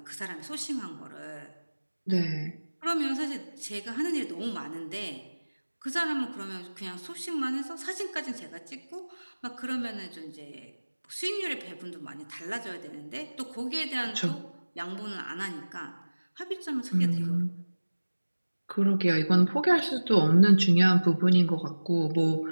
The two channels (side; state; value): both; inverted; correlation -1.00